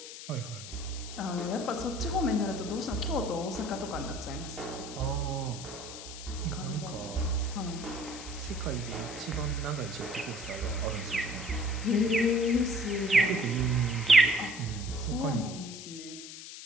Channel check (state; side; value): noise; left; hiss, 12 dB below the sound